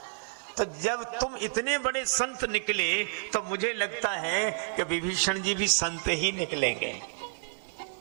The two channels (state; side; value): silent; left; digital silence